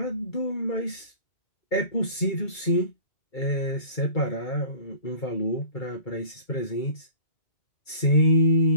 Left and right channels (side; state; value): right; late; 2.3 ms